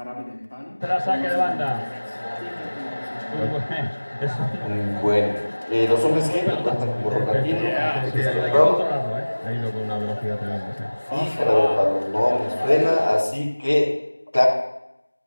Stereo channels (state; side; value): inverted; both; correlation -1.00